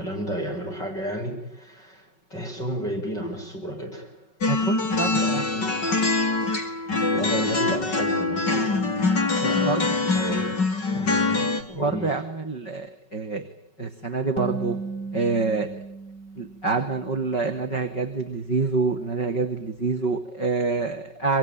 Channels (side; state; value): right; late; 5.3 ms